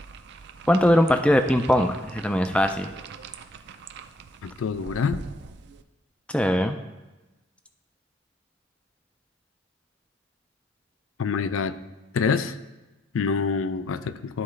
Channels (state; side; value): normal; both; correlation 0.73